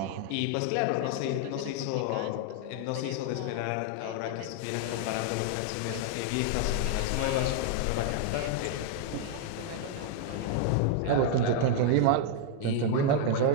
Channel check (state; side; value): different; both; correlation 0.00